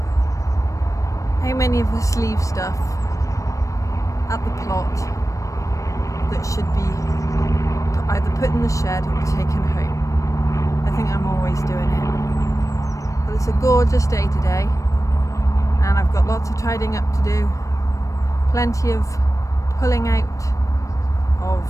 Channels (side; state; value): right; late; 0.16 ms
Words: How many of us leave stuff at the plot that should be either put in the shed or taken home? I think I'm always doing it. But it's a gorgeous day today, and I've got lots of tidying up to do. Plenty of pulling out of